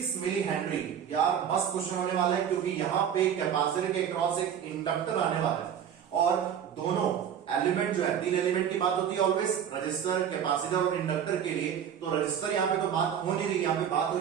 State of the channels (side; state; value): left; quieter; 8.7 dB